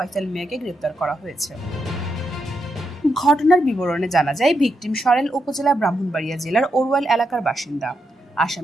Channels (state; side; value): normal; both; correlation 0.83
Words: মিয়াকে গ্রেফতার করা হয়েছে। ঘটনার বিবরণে জানা যায়, ভিকটিম সরাইল উপজেলা ব্রাহ্মণবাড়িয়া জেলার ওরওয়াল এলাকার বাসিন্দা।